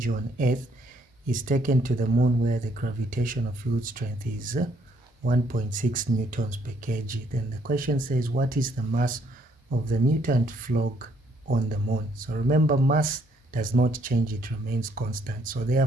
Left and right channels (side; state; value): both; normal; correlation 0.68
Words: on Earth is taken to the moon where the gravitational field strength is 1.6 newtons per kg. Then the question says, what is the mass of the mutant frog on the moon? So remember, mass does not change, it remains constant. So